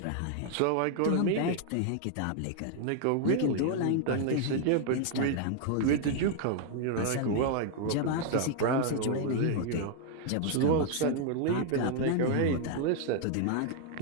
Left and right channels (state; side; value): different; both; correlation 0.00